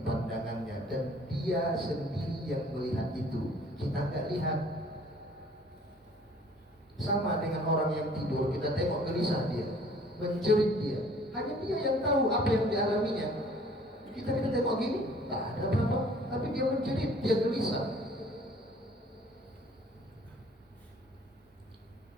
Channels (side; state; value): both; normal; correlation 0.54